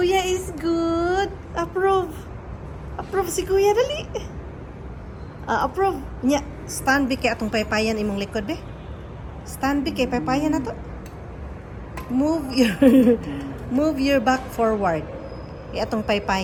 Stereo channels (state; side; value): identical; both; correlation 1.00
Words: is good. Approve. Approve si Kuya, dali. Approve. Nya, stand be kay atong paypayan imong likod be. Stand be kay paypayan na to. Move your move your back forward. Kay atong